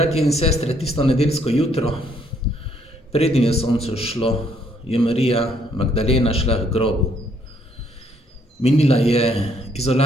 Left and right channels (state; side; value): normal; both; correlation 0.68